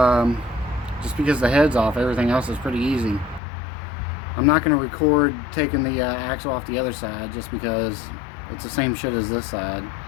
just because the head's off, everything else is pretty easy. I'm not going to record taking the axle off the other side just because it's the same shit as this side.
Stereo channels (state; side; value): drops out; right; at 3.4 s